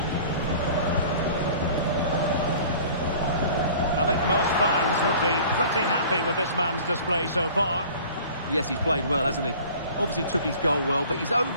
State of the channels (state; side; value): inverted; both; correlation -0.46